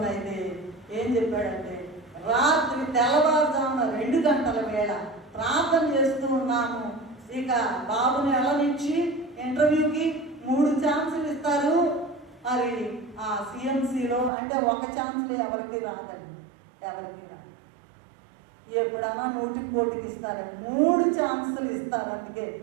ఏం చెప్పాడంటే, రాత్రి తెల్లవారుజామున 2 గంటల వేళ ప్రార్థన చేస్తూ ఉన్నాము. ఇక బాబుని నుంచి ఇంటర్వ్యూకి 3 ఛాన్సులు ఇస్తారు. మరి ఆ CMCలో అంటే ఒక ఛాన్సులు ఎవరికి రాదండి, ఎవరికి రాదు. ఎప్పుడన్నా 100కి 1కి ఇస్తారు, 3 ఛాన్సులు ఇస్తారు. అందుకే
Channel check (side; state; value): left; drops out; at 14.3 s